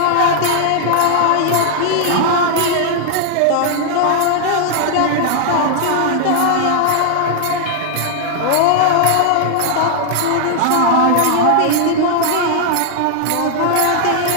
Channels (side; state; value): both; different; correlation 0.00